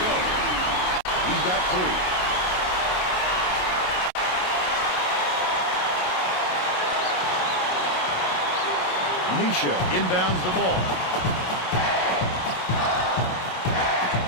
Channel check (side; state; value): right; late; 27 ms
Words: He's got 3. Misha inbounds the ball.